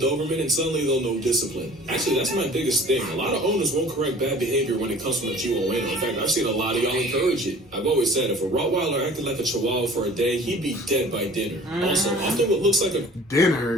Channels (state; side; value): normal; both; correlation 0.47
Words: and suddenly they'll know discipline. Actually, that's my biggest thing. A lot of owners won't correct bad behavior when it comes from a Chihuahua. In fact, I've seen a lot of y'all encourage it. I've always said if a Rottweiler acted like a Chihuahua for a day, he'd be dead by dinner. Also, often what looks like a